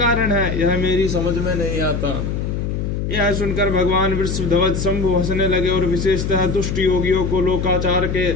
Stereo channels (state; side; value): noise; left; hum, 2 dB below the sound